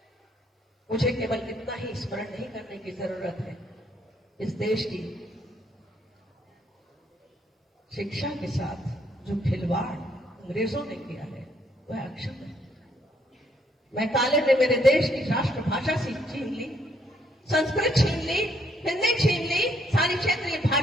मुझे केवल इतना ही स्मरण नहीं करने की जरूरत है, इस देश की शिक्षा के साथ जो खिलवाड़ अंग्रेजों ने किया है वह अक्षम्य है। मैं काले ने मेरे देश की राष्ट्रभाषा छीन ली, संस्कृत छीन ली, हिंदी छीन ली, सारी क्षेत्रीय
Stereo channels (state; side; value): normal; both; correlation 0.70